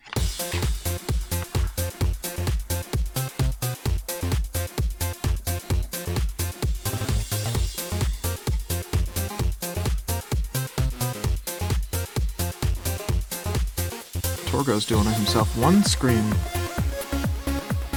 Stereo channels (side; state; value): both; identical; correlation 1.00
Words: Torgo's doing it himself. One scream.